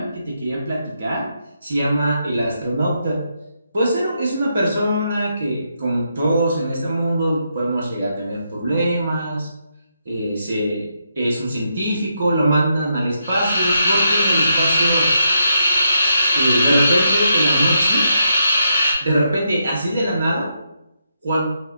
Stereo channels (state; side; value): inverted; both; correlation -0.81